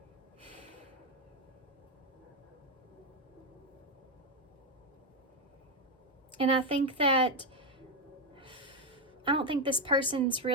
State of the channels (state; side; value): normal; both; correlation 0.06